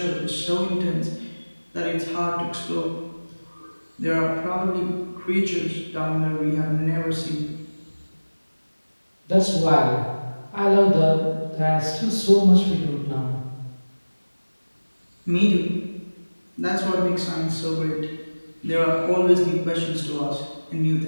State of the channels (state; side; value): inverted; both; correlation -1.00